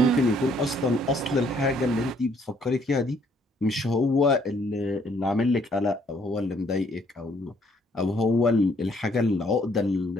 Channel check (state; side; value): normal; both; correlation 0.66